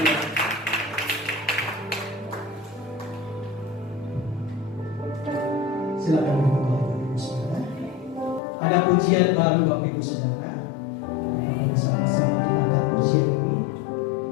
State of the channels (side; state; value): right; drops out; at 8.4 s